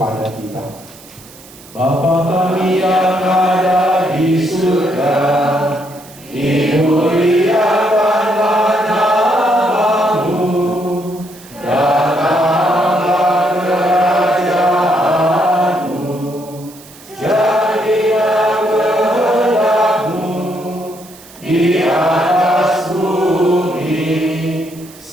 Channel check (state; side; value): noise; right; hiss, 21 dB below the sound